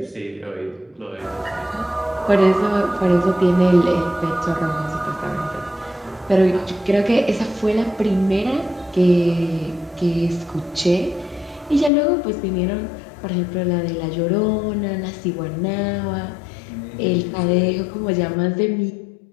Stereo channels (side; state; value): right; drops out; at 11.9 s